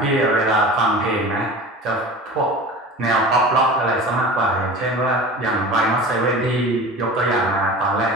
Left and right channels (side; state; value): both; normal; correlation 0.36